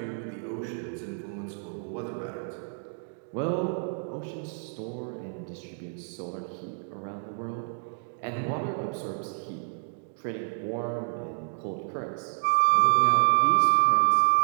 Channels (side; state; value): left; silent; 59 dB below the other